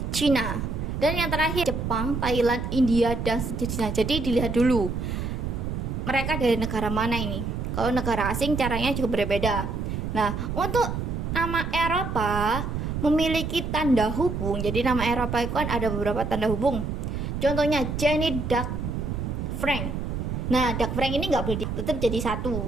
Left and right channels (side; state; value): right; noise; rumble, 3 dB below the sound